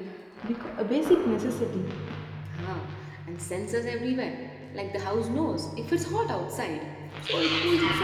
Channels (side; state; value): both; identical; correlation 1.00